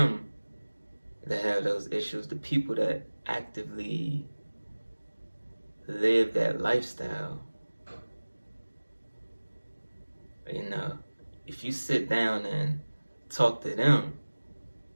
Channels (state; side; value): inverted; both; correlation -1.00